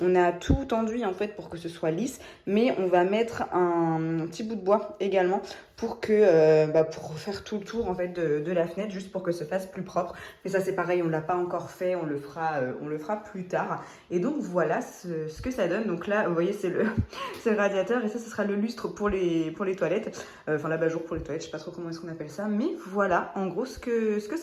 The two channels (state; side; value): identical; both; correlation 1.00